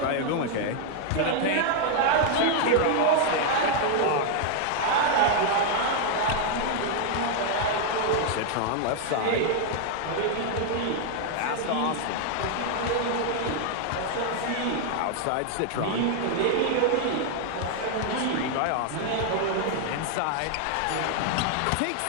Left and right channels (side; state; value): both; different; correlation 0.00